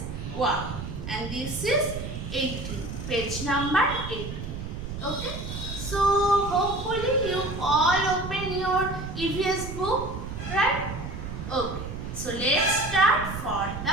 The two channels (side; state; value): right; noise; rumble, 7 dB below the sound